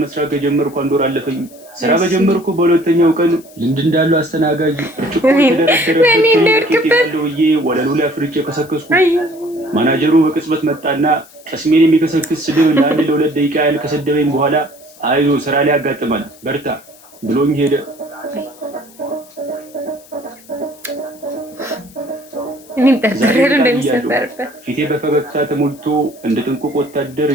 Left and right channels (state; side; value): noise; left; hiss, 24 dB below the sound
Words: መስራት ከጀመርኩ አንድ ወር አለፈኝ። ስራ በጀመርኩ በሁለተኛው ቀን ልምድ እንዳለው አስተናጋጅ ብዬ ወለሉ ላይ አፍርጬ ከሰከስኩ። ማናጀሩ በቅጽበት መጣና ቀስሜን የሚከሰክስ ስድብ ለአንድ ለሁለት ደቂቃ ያህል ከሰደበኝ በኋላ አይዞ ስራ ላይ ያጋጥማል በርታ ብሎኝ ሄደ። ፊቴ በፈገግታ ተሞልቶ እንደ ጥንቁቅ ወታደር